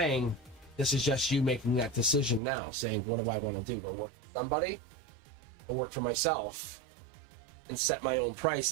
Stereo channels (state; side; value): drops out; left; at 2.4 s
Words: this is just you making that decision now, saying, what do I want to do? Go work for somebody? Or work for myself? And set my own price